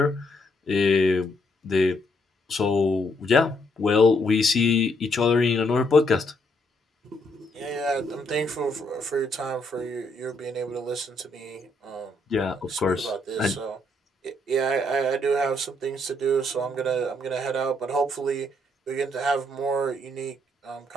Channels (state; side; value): normal; both; correlation 0.73